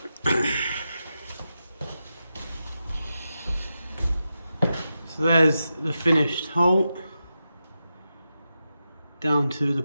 there's the finished hole down to the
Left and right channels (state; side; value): inverted; both; correlation -0.89